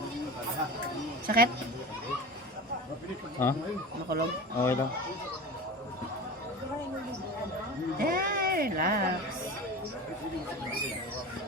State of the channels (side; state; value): both; normal; correlation 0.31